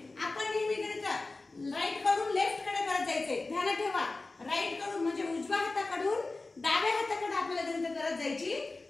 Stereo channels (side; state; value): right; quieter; 3.4 dB